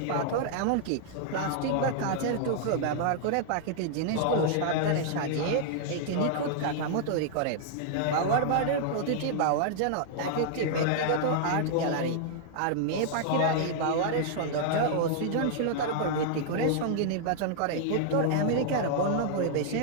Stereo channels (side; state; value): both; different; correlation -0.01